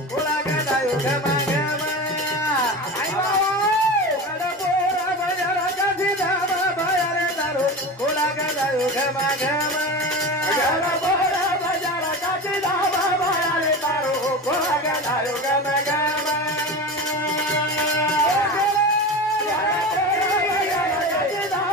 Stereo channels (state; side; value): normal; both; correlation 0.28